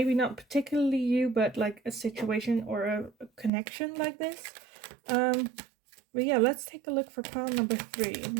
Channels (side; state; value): left; drops out; at 3.5 s